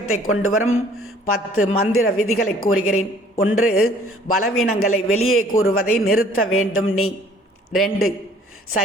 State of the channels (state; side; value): normal; both; correlation 0.56